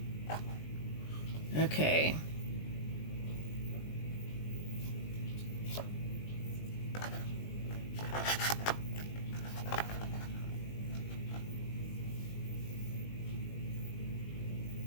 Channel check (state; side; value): late; right; 20 ms